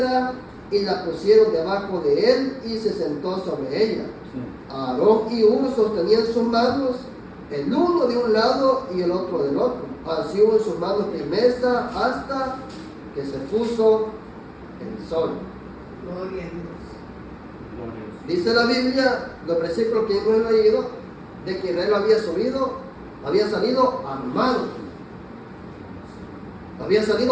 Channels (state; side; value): identical; both; correlation 1.00